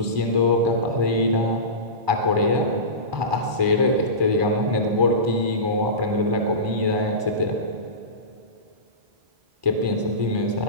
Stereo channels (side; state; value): left; late; 1.0 ms